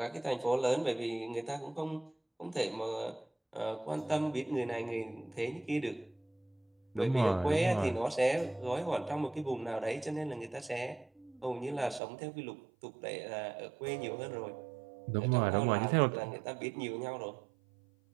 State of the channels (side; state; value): left; drops out; at 12.0 s